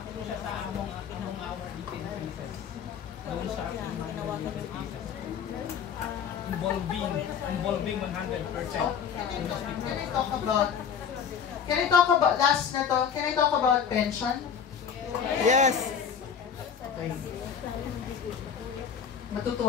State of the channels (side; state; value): right; quieter; 7.3 dB